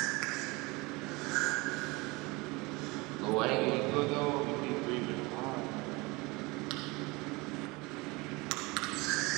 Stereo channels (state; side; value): quieter; left; 24.6 dB